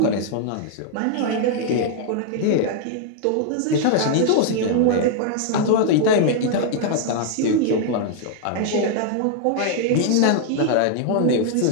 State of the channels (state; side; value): different; both; correlation 0.00